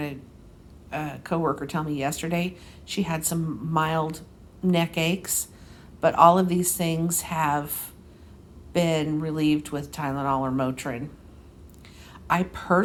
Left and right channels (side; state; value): both; identical; correlation 1.00